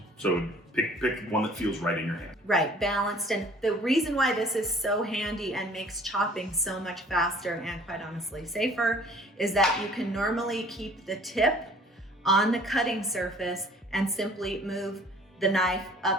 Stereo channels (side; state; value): both; normal; correlation 0.53